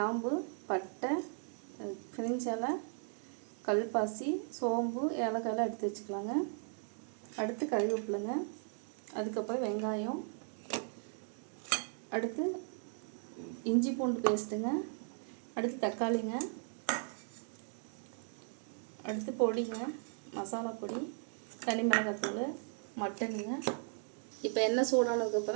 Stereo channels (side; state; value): left; silent; 53 dB below the other